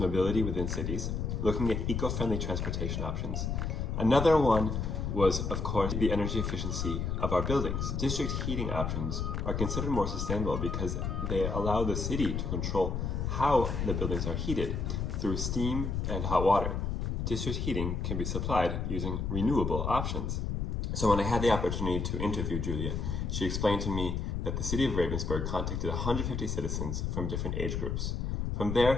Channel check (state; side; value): noise; left; rumble, 1 dB below the sound